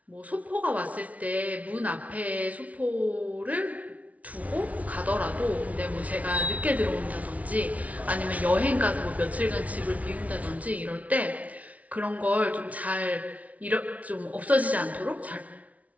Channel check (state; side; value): late; left; 0.068 ms